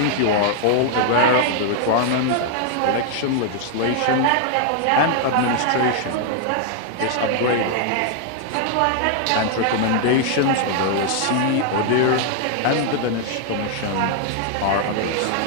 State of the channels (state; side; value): different; both; correlation 0.00